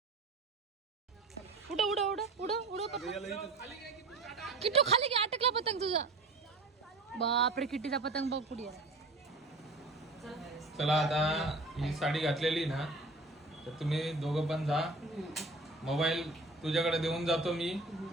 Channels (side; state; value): left; quieter; 3.1 dB